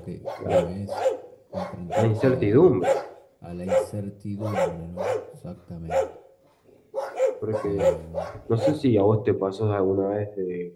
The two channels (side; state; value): both; identical; correlation 1.00